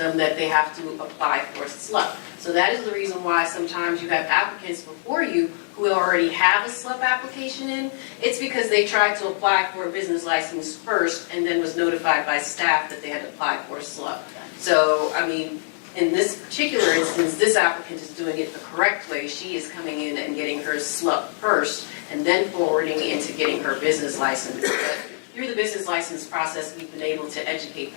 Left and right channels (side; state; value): right; silent; digital silence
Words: that they have to apply for a SLUP. So that is the reason why sometimes you have applicants before you who already have a SLUP application in. It's because they tried to apply for a business license first and then was notified by staff that they had to apply for a SLUP. So, I mean, in this particular instance, this applicant is doing it the correct way. She is coming in and getting her SLUP first and then forwarding into getting her business license. But through the business license process, we've been able to educate